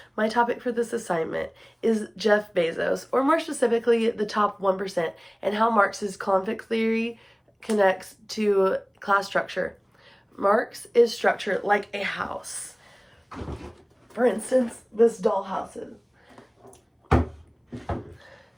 my topic for this assignment is Jeff Bezos, or more specifically, the top 1%, and how Marx's conflict theory connects to class structure. Marx is structured like a house. For instance, this dollhouse.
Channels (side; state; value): both; identical; correlation 1.00